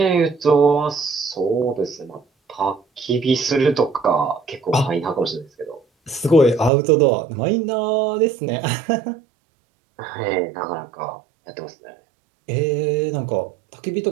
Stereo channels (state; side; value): drops out; left; at 6.7 s